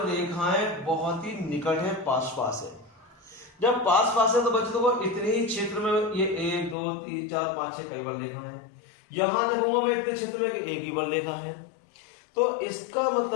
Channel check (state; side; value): drops out; right; at 6.8 s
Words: रेखाएं बहुत ही निकट है, पास पास है। जब पास पास है तो बच्चों देखो इतने ही क्षेत्र में ये 1 2 3 4 5 6 कई बल रेखा है, यहां देखूंगा मैं इतने क्षेत्र में एक ही बल रेखा है, तो इसका